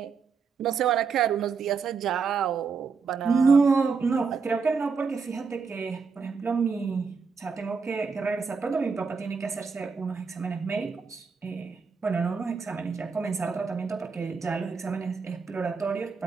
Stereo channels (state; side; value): quieter; left; 5.2 dB